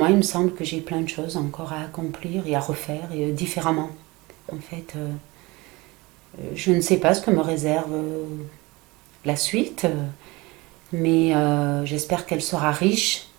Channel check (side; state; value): left; quieter; 23.1 dB